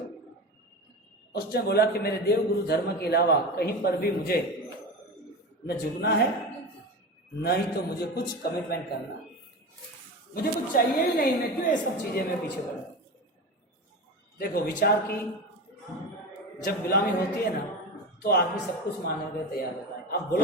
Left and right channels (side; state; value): both; normal; correlation 0.25